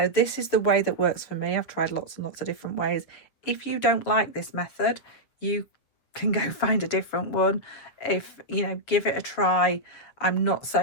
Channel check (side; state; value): right; late; 7.4 ms